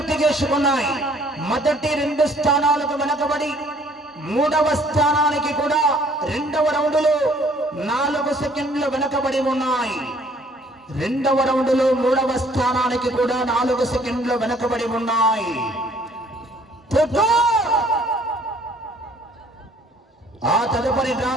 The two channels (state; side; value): normal; both; correlation 0.59